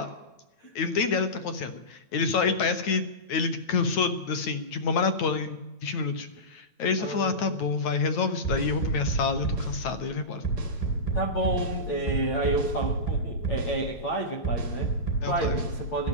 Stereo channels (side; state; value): right; late; 9.3 ms